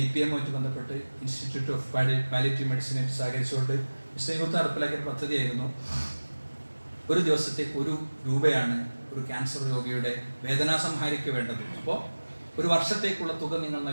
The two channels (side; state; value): both; inverted; correlation -1.00